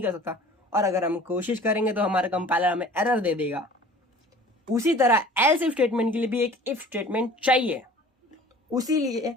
कर सकता। और अगर हम कोशिश करेंगे तो हमारा कंपाइलर हमें एरर दे देगा। उसी तरह एल्स इफ स्टेटमेंट के लिए भी एक इफ स्टेटमेंट चाहिए, उसीलिए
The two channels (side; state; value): both; normal; correlation 0.46